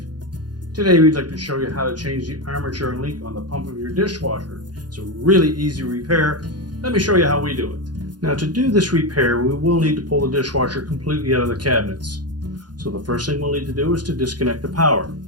Today we'd like to show you how to change the armature link on the pump of your dishwasher. It's a really easy repair. Let me show you how we do it. Now, to do this repair, we will need to pull the dishwasher completely out of the cabinets. So the first thing we'll need to do is to disconnect the power.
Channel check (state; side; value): late; left; 0.70 ms